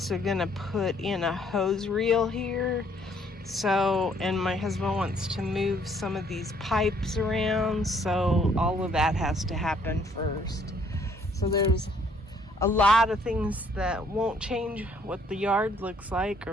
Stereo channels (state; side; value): normal; both; correlation 0.64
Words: gonna put in a hose reel here. So, and my husband wants to move some of these pipes around, so all of that has to happen first. So there's a lot of things that won't change what the yard looks like